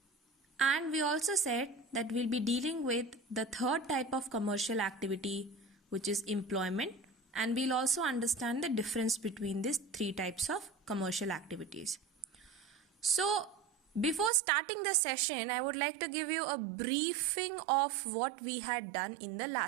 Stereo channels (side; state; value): left; drops out; at 14.3 s